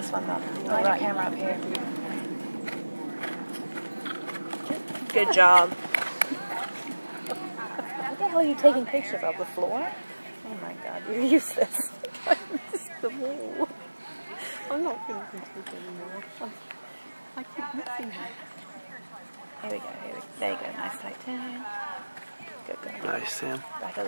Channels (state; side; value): inverted; both; correlation -1.00